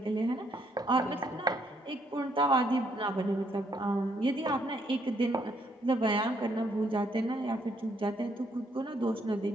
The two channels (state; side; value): normal; both; correlation 0.71